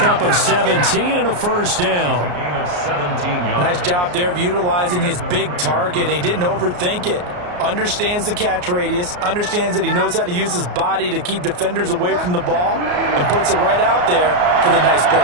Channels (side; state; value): left; late; 34 ms